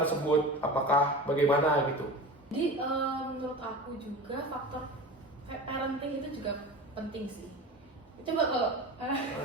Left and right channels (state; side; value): normal; both; correlation 0.32